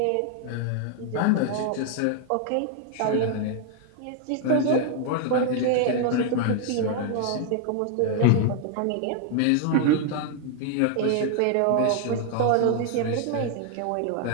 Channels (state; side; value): different; both; correlation 0.00